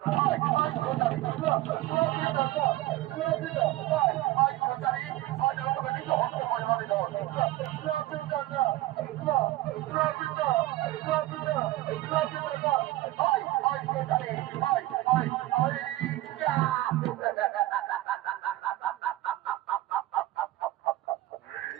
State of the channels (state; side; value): quieter; left; 16.5 dB